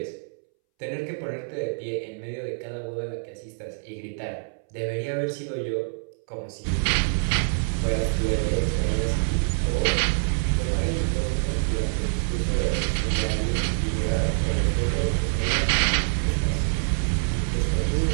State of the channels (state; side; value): silent; left; 61 dB below the other